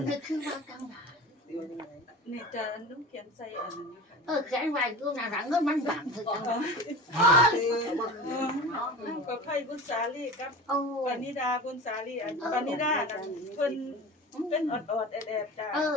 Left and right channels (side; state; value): both; normal; correlation 0.34